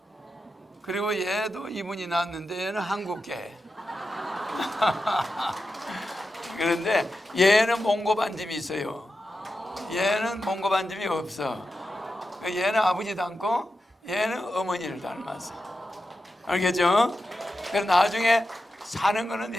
그리고 얘도 이분이 낳았는데 얘는 한국계. 그런데 얘는 몽고 반점이 있어요. 얘는 몽고 반점이 없어. 얘는 아버지 닮고 얘는 어머니를 닮았어. 알겠죠? 그래서 나중에 사는 거는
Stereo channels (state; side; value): normal; both; correlation 0.90